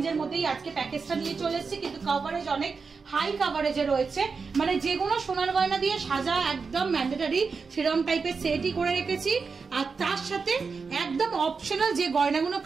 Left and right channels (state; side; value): quieter; left; 5.0 dB